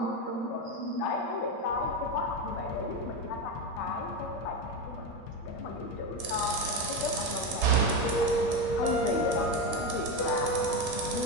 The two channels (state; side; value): late; right; 8.7 ms